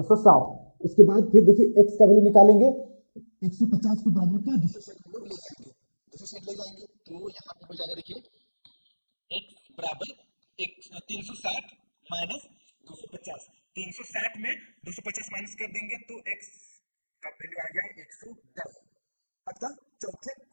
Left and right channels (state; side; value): inverted; both; correlation -1.00